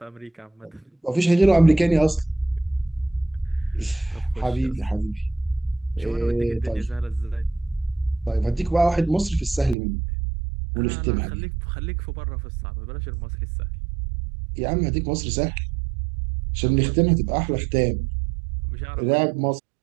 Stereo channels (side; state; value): left; drops out; at 9.8 s